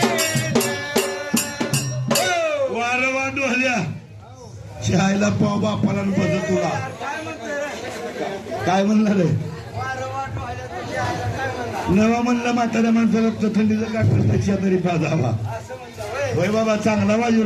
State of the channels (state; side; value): identical; both; correlation 1.00